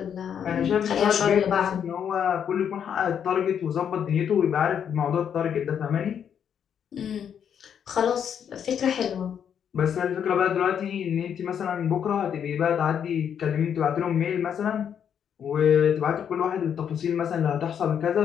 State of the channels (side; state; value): right; quieter; 8.3 dB